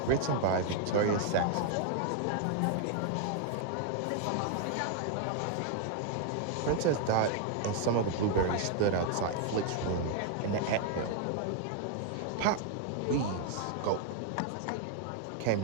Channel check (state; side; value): different; both; correlation 0.00